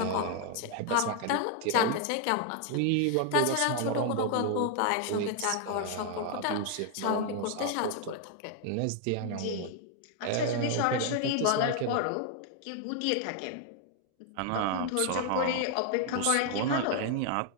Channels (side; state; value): both; different; correlation 0.00